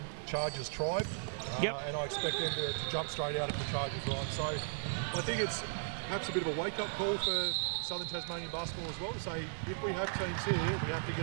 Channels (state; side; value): silent; left; digital silence